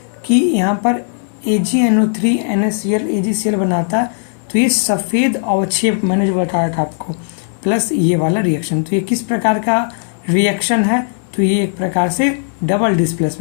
कि यहाँ पर AgNO3 NaCl AgCl बनाता है, तो ये सफ़ेद अवक्षेप मैंने जो बताया था आपको, प्लस ये वाला रिएक्शन, तो ये किस प्रकार का रिएक्शन है? तो ये एक प्रकार से डबल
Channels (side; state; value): right; silent; digital silence